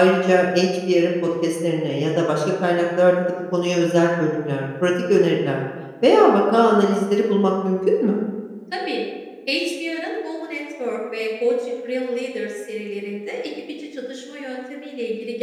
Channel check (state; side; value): identical; both; correlation 1.00